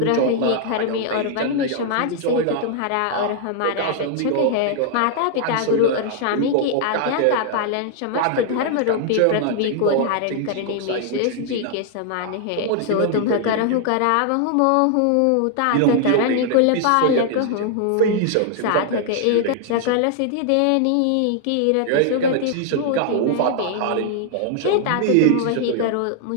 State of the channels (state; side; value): different; both; correlation 0.00